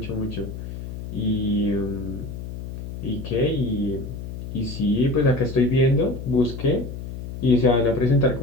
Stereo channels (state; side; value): noise; left; hum, 9 dB below the sound